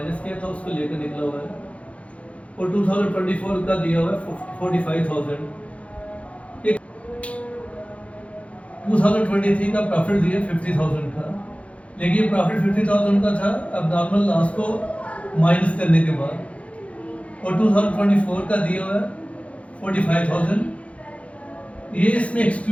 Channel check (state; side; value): late; right; 0.063 ms